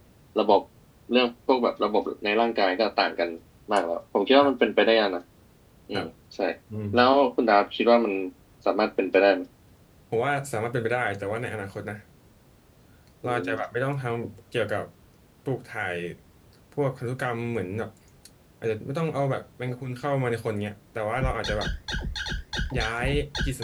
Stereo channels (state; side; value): identical; both; correlation 1.00